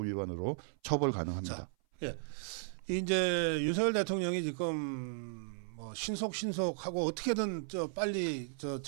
위반으로 처벌 가능합니다. 자, 예. 이제 윤석열 대통령이 지금 뭐 신속하고 어떻게든 빨리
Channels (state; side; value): silent; left; 54 dB below the other